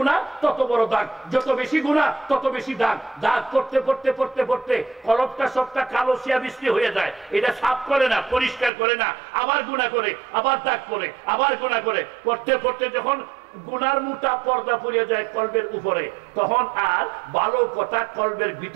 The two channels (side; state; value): left; drops out; at 8.7 s